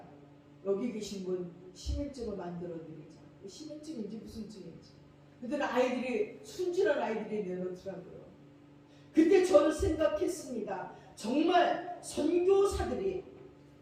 여기 계신 분 시민증을 만들어 드리자. 시민증인지 무슨 증인지. 그때는 아이들이 순진한 아이들이 내놓더라고요. 그때 저는 생각했습니다. 정말 선교사들이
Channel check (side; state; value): both; identical; correlation 1.00